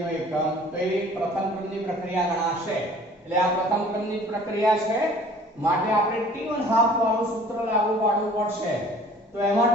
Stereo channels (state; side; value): normal; both; correlation 0.50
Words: એકમ તો એ પ્રથમ ક્રમની પ્રક્રિયા ગણાશે। એટલે આ પ્રથમ ક્રમની પ્રક્રિયા છે માટે આપણે t1 હાફ વાળું સૂત્ર લાગુ પાડવું પડશે। તો એમાં